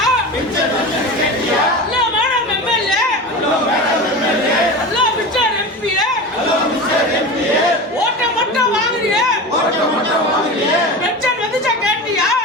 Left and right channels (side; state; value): both; normal; correlation 0.28